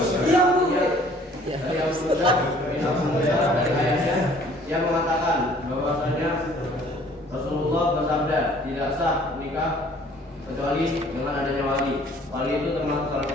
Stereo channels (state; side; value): normal; both; correlation 0.55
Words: sah nikah kecuali dengan adanya wali. Wali itu termasuk salah